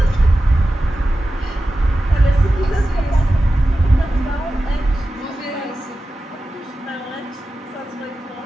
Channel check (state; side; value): normal; both; correlation 0.93